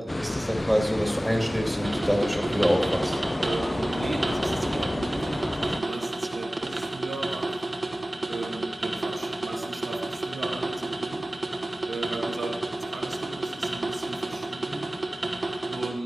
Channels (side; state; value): both; normal; correlation 0.97